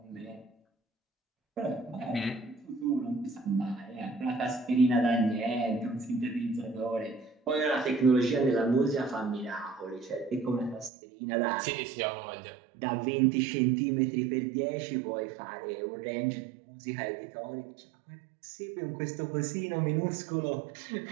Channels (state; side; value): drops out; left; at 10.9 s